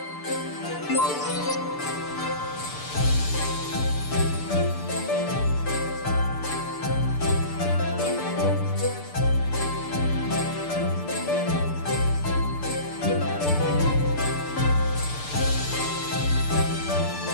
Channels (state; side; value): late; right; 6.8 ms